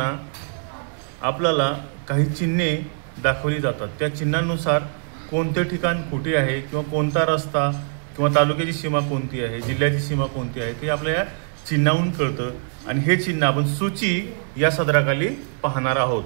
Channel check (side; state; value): left; silent; 59 dB below the other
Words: आपल्याला काही चिन्हे दाखवली जातात। त्या चिन्हांनुसार कोणते ठिकाण कुठे आहे किंवा कोणता रस्ता किंवा तालुक्याची सीमा कोणती आहे, जिल्ह्याची सीमा कोणती आहे ते आपल्या चिन्हावरून कळतं। आणि हे चिन्ह आपण सूची या सदराखाली पाहणार आहोत।